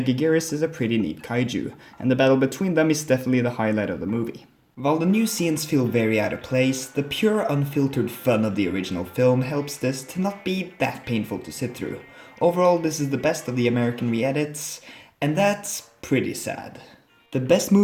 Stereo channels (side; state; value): both; identical; correlation 1.00